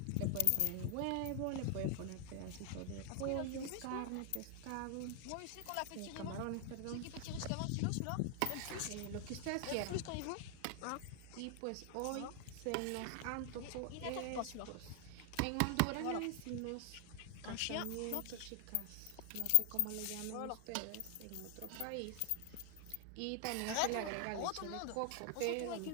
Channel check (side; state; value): both; different; correlation 0.00